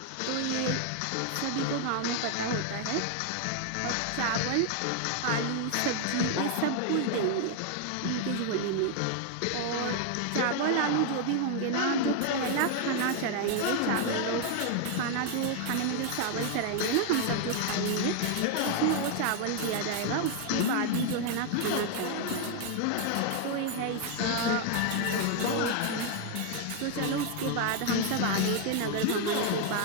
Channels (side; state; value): both; different; correlation 0.00